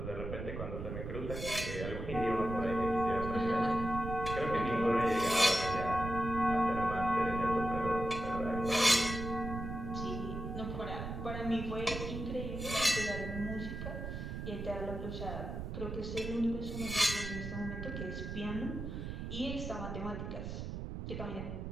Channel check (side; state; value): right; noise; rumble, 6 dB below the sound